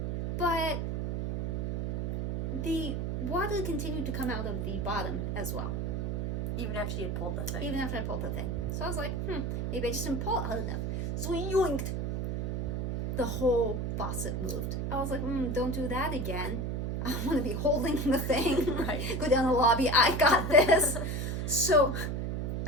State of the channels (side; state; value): right; noise; hum, 1 dB below the sound